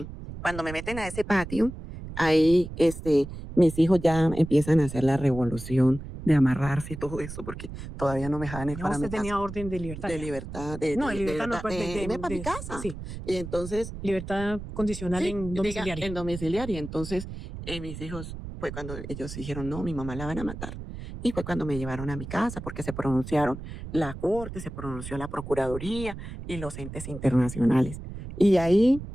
Cuando me meten a ese patio, ahí mis hijos ya empiezan a hacer la revolución de amarrarse y todo eso, porque todavía no me dejaban ir Ya para usted mi casa. tenía orden de libertad. De ya. libertad, No, de libertad no, verdad, pues irme para mi casa. sí, Y entonces, libertad condicional sí, en diga, domiciliaria. en domiciliaria. Entonces, mis hijos, fue cuando ellos dijeron, no, mi mamá la van a matar. Y fue cuando me llevaron a mi casa, porque se pronunciaron la corte, se pronunció la procuraduría y los entes internacionales. Y ahí,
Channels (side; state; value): right; noise; rumble, 10 dB below the sound